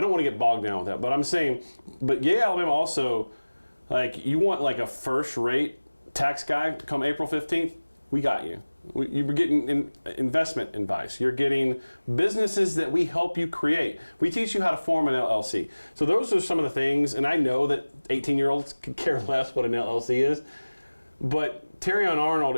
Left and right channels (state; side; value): inverted; both; correlation -1.00